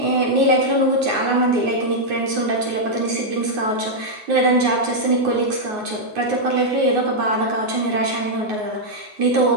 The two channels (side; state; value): left; late; 9.5 ms